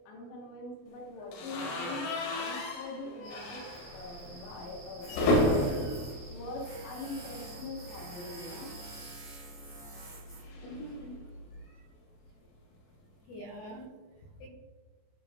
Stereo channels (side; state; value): right; late; 28 ms